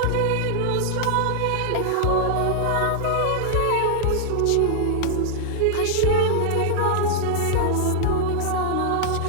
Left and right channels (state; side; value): different; both; correlation -0.01